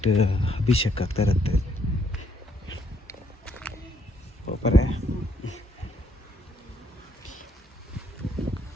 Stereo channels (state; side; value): normal; both; correlation 0.71